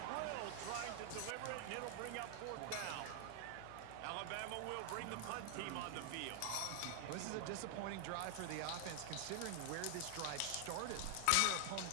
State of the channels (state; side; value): different; both; correlation 0.00